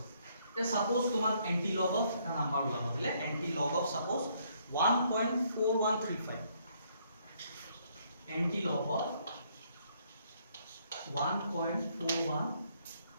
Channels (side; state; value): both; inverted; correlation -0.69